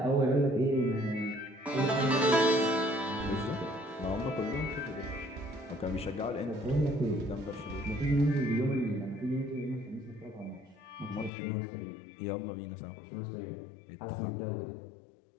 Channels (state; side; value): drops out; right; at 11.3 s